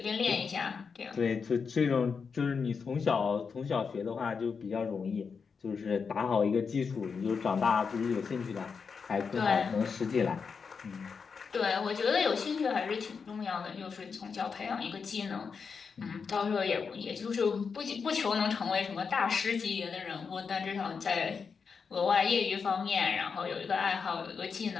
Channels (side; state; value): right; quieter; 5.6 dB